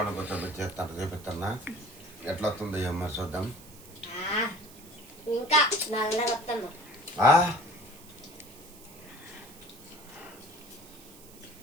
కూర్చొని చేస్తాను చూపిస్తున్నా. ఎట్లా వస్తుందో ఏం మరి చూద్దాం. ఇంకా నల్లగా వస్తాను.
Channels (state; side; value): noise; right; hiss, 20 dB below the sound